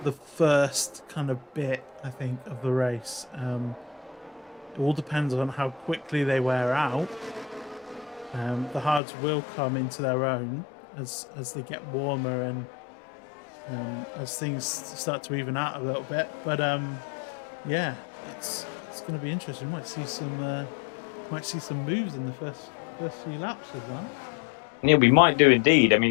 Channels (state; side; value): drops out; right; at 9.0 s